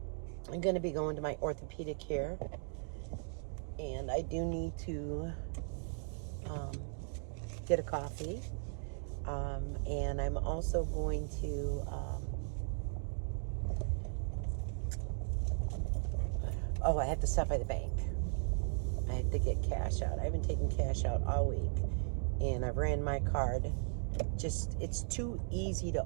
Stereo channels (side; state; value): left; silent; 53 dB below the other